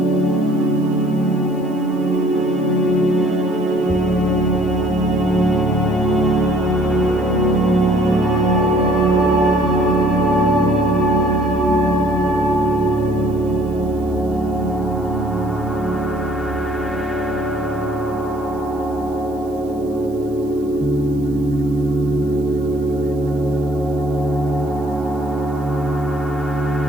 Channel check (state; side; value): noise; right; hiss, 28 dB below the sound